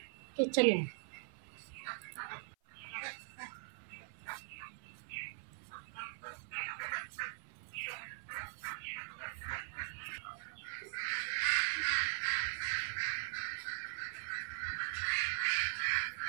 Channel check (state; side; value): silent; left; 50 dB below the other